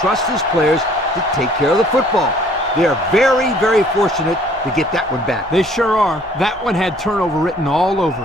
his players to take care of the football. They are very, very fortunate to get that one back. They sure are. That one had turnover written all over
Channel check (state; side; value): normal; both; correlation 0.58